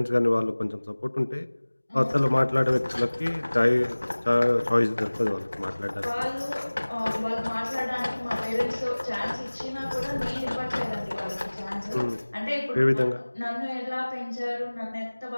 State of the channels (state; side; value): inverted; both; correlation -1.00